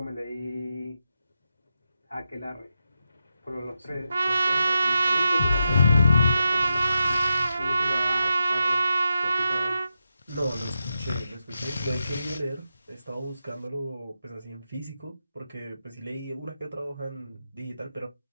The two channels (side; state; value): both; inverted; correlation -0.87